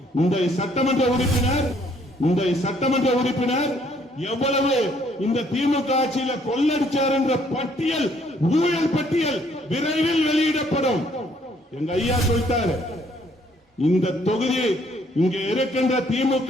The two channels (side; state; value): both; normal; correlation 0.65